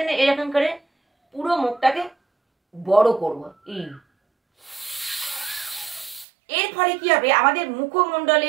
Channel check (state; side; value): drops out; left; at 6.2 s